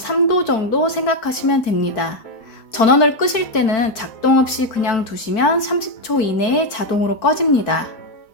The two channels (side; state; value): right; late; 4.5 ms